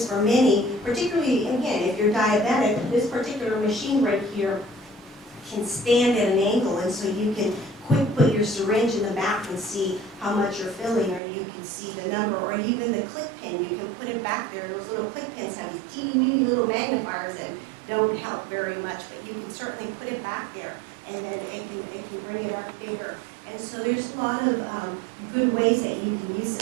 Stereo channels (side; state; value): left; drops out; at 11.2 s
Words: for many, particularly, again, if you're diabetic, this particular machine right here can stand at an angle, and so you can quick put your syringe in the back and see how much you're filling, or you can see the number, or even the click pin, you can put it back there. Those little click pins have these teeny weeny little magnifiers that don't help very much, but you can certainly put it back there, and then it can bring it up bigger. And so there's a lot of good ways that you can use